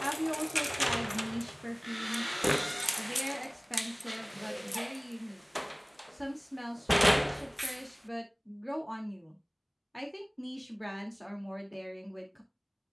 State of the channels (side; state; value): both; identical; correlation 1.00